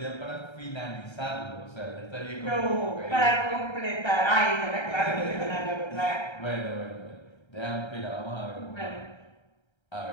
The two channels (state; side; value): late; right; 1.3 ms